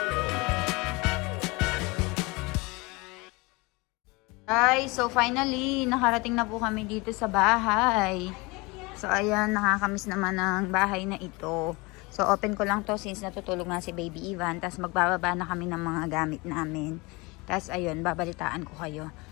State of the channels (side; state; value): right; quieter; 25.4 dB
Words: Guys, so finally, nakarating na po kami dito sa bahay. So, ayan, nakakamiss naman ang bahay na ito. So, open ko lang to since natutulog nga si Baby Ivan. Tapos, magbababa na kami ng mga gamit namin. Tapos, ayun, babalitaan ko kayo.